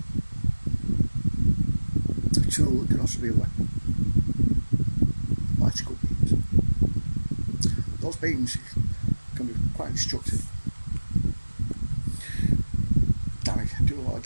tool, it can also be a weapon. Particle beams. Those beams can be quite destructive. Do a lot of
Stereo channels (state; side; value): inverted; both; correlation -1.00